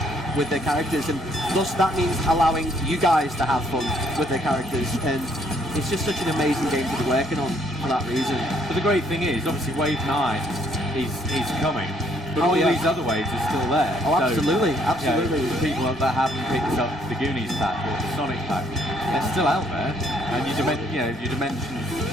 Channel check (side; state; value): both; normal; correlation 0.66